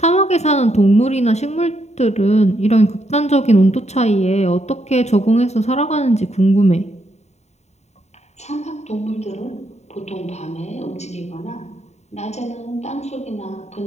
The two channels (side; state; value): right; late; 0.32 ms